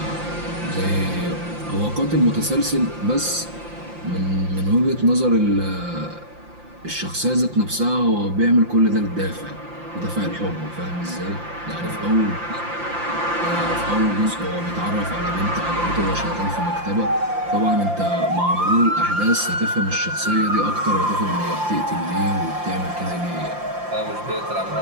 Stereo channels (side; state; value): left; late; 5.8 ms